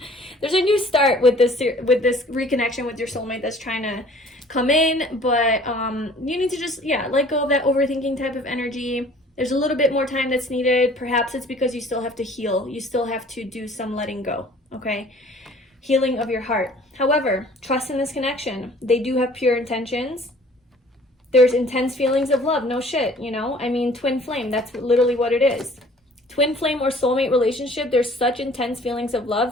There's a new start with this reconnection with your soulmate that's trying to come in, but you need to just, let go of that overthinking type of energy. There's a little bit more time that's needed. Perhaps it's because you still have to heal. You still have to do some letting go, okay? Healing of your heart. However, trust in this connection. They do have pure intentions. There's intense feelings of love. No shit, you know? I mean, twin flame, that's literally what it is. Twin flame or soulmate relationship, there's such intense feelings of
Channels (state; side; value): normal; both; correlation 0.52